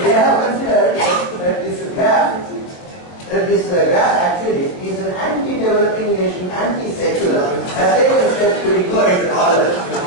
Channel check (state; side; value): late; right; 23 ms